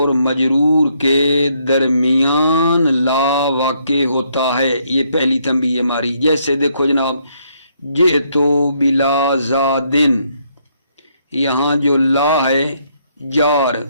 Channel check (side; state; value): both; inverted; correlation -0.73